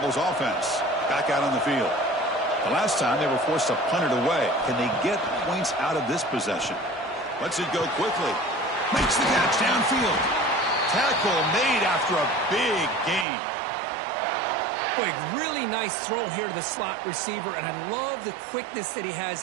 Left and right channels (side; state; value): left; drops out; at 13.2 s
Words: offense back out on the field. The last time they were forced to punt it away. Can they get points out of this possession? Lets it go quickly. Makes the catch downfield. Tackle made after a big gain. Boy, really nice throw here to the slot receiver, and I love the quickness that he